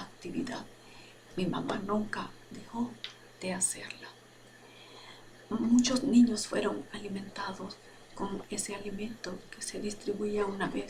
Mi mamá nunca dejó de hacerla. Muchos niños fueron alimentados con ese alimento que se distribuía una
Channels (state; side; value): identical; both; correlation 1.00